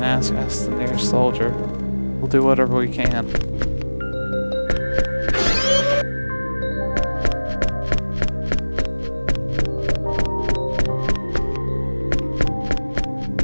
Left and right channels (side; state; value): both; inverted; correlation -1.00